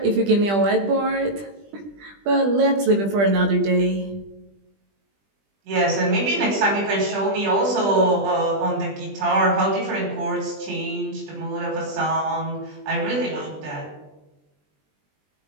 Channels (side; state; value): left; late; 20 ms